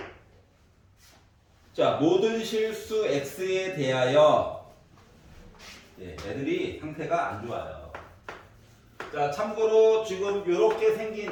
자, 모든 실수 x에 대하여 애들이 상태가 안 좋아요. 자, 참고로 지금 이렇게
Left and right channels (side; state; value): both; identical; correlation 1.00